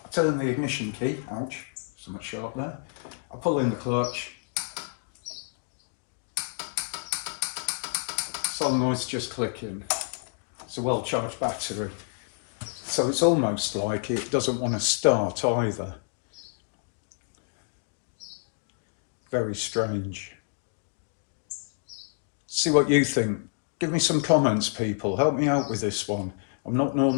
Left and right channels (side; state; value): right; silent; digital silence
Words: I turn the ignition key, ouch, somewhat sharp there. I pull in the clutch. Solenoid's just clicking. It's a well-charged battery. So it's almost like it doesn't want to start either. Very strange. See what you think. Give me some comments, people. Help me out with this one. I'm not